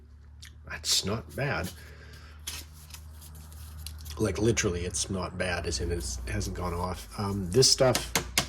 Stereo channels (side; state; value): both; identical; correlation 1.00